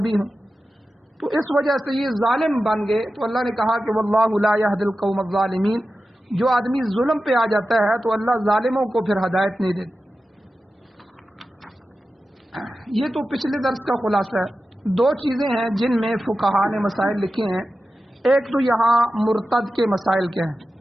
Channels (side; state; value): both; normal; correlation 0.93